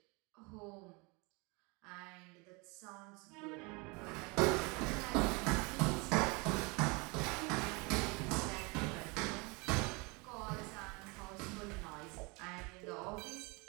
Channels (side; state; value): left; quieter; 28.3 dB